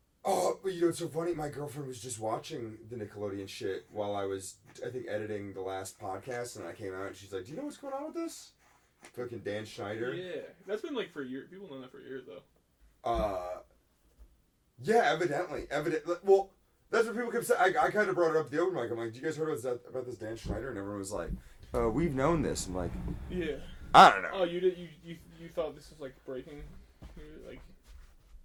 Oh, but you know, it's so funny. My girlfriend was just watching the Nickelodeon shit while I was, I think, editing the last podcast, and I came out, and she's like, "Do you know what's going on with this?" Fucking Dan Schneider. Yeah, that's been like for years. People know that for years though. Yeah, evidently. Well, that's what people kept saying. I kind of brought it up at the open mic. I'm like, "Do you guys heard about this Dan Schneider?" And everyone was like, "We've known this." I'm like, Yeah. I don't know. Oh, you did. You thought this was like breaking, like.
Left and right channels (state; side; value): identical; both; correlation 1.00